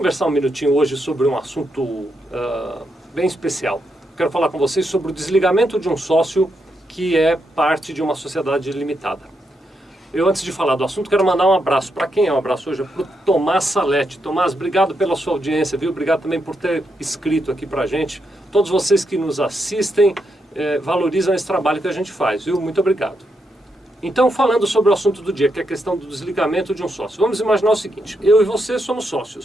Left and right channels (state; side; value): normal; both; correlation 0.81